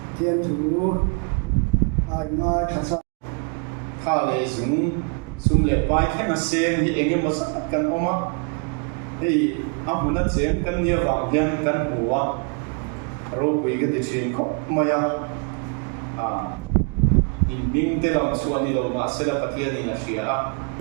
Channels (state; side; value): quieter; left; 38.1 dB